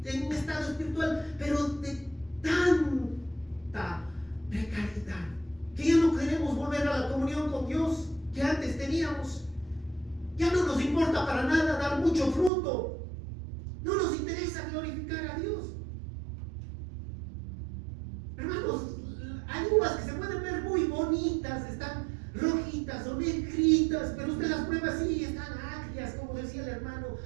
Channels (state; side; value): drops out; left; at 12.5 s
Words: estado espiritual, pero de tanta precariedad, que ya no queremos volver a la comunión con Dios que antes teníamos? Ya no nos importa para nada dar mucho fruto. No nos interesa glorificar a Dios. Hermanos, hay uvas que se pueden ver muy bonitas, están rojitas o negritas, pero usted las prueba así, están agrias, como decía el hermano